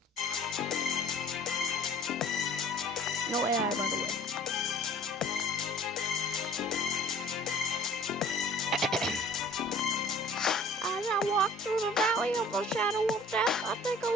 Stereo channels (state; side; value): normal; both; correlation 0.49